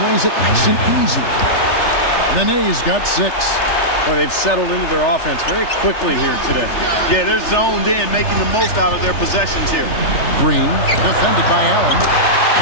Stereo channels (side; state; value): right; late; 3.3 ms